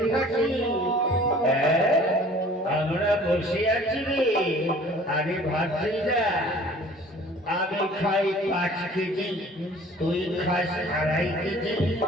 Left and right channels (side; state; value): both; normal; correlation 0.50